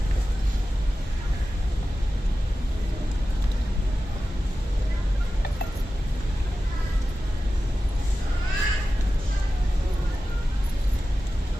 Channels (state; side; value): normal; both; correlation 0.94